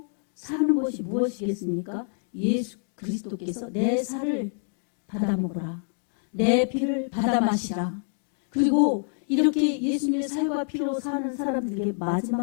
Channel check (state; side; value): silent; right; 60 dB below the other